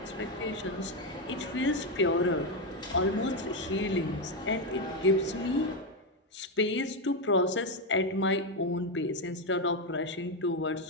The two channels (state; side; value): normal; both; correlation 0.07